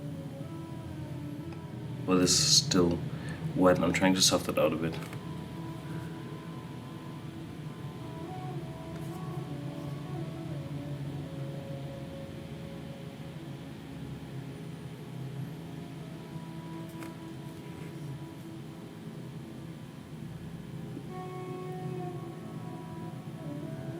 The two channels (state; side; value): identical; both; correlation 1.00